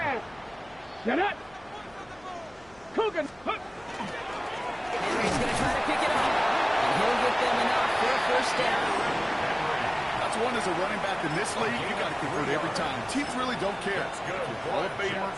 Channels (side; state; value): left; noise; hum, 27 dB below the sound